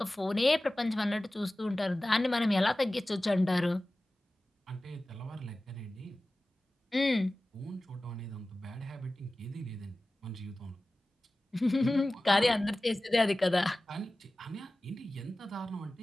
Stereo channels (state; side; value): normal; both; correlation 0.96